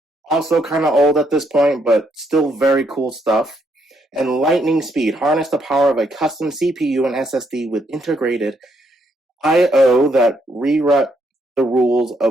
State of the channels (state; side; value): normal; both; correlation 0.74